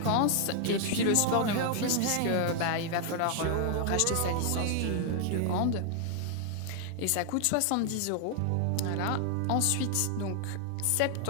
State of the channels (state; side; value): different; both; correlation 0.00